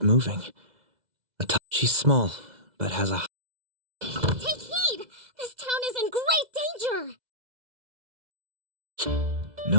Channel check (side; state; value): left; late; 2.0 ms